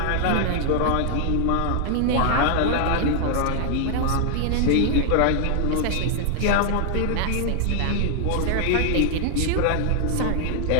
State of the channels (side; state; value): both; different; correlation 0.00